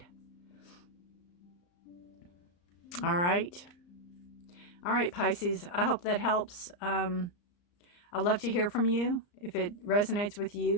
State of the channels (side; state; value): right; late; 34 ms